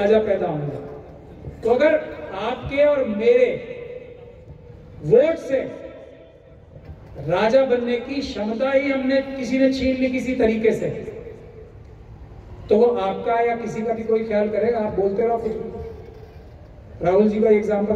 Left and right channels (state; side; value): identical; both; correlation 1.00